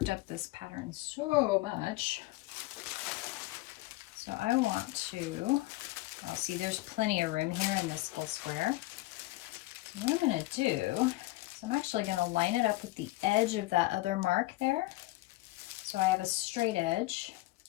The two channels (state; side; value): quieter; right; 19.7 dB